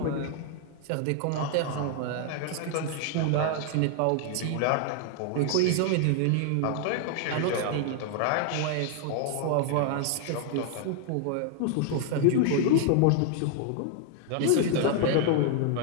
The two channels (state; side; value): different; both; correlation 0.00